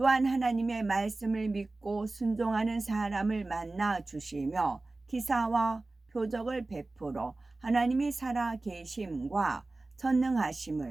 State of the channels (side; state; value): left; quieter; 3.2 dB